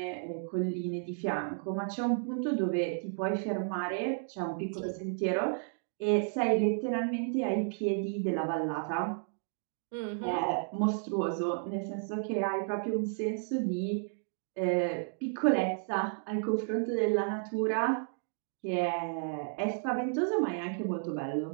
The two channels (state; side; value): silent; left; digital silence